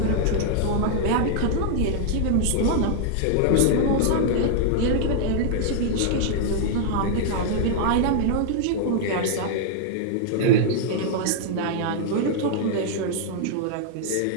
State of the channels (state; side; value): different; both; correlation -0.01